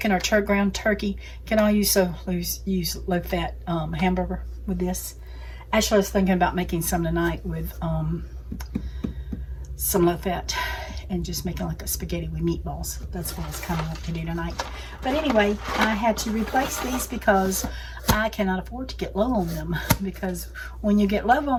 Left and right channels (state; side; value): identical; both; correlation 1.00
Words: or ground turkey. Can I use low fat hamburger with this? Actually, I was thinking about making some tonight with some low fat and just making like a spaghetti with meatballs. That's what I was kind of like to do tonight. But anyway, I had to replace these because I cannot afford to get low on them, because when you get low